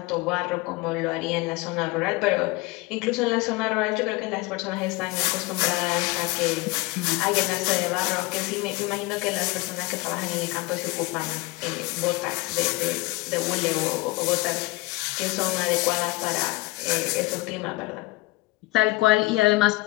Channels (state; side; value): quieter; right; 21.6 dB